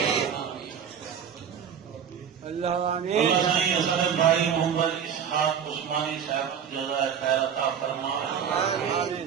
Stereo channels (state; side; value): quieter; left; 7.9 dB